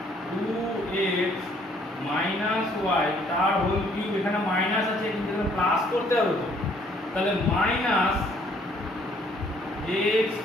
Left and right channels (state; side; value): normal; both; correlation 0.63